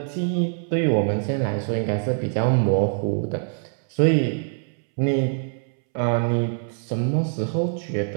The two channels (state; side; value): silent; left; 63 dB below the other